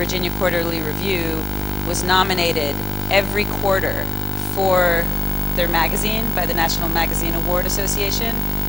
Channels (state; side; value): quieter; right; 3.2 dB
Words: Quarterly Review was nominated every quarter for their magazine by the National Magazine Award Association